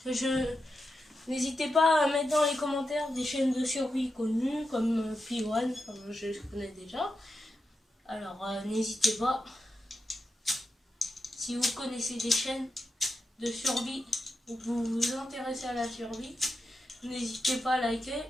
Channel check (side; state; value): both; normal; correlation 0.88